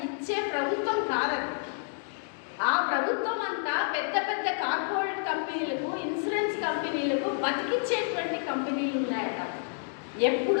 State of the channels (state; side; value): silent; right; digital silence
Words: ఇచ్చే ప్రభుత్వం కాదని. ఆ ప్రభుత్వం అంతా పెద్ద పెద్ద కార్పొరేట్ కంపెనీలకు, ఇన్సూరెన్స్ కంపెనీలకు బతికిచ్చేటువంటి కంపెనీలు ఉన్నాయట.